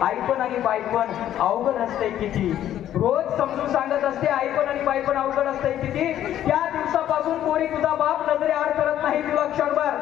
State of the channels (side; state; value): right; quieter; 11.6 dB